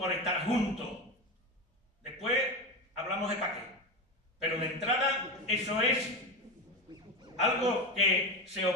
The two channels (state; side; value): normal; both; correlation 0.18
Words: estar juntos. Después hablamos de pa' qué. Pero de entrada, eso es algo que se